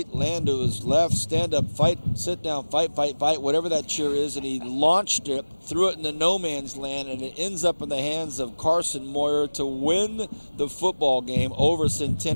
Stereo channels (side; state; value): both; inverted; correlation -1.00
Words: ran to his left, stand up, fight, sit down, fight, whatever that cheer is, and he launched it, threw it into no man's land, and it ends up in the hands of Carson Moyer to win the football game over